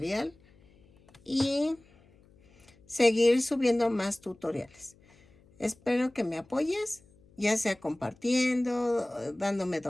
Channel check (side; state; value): left; noise; hum, 29 dB below the sound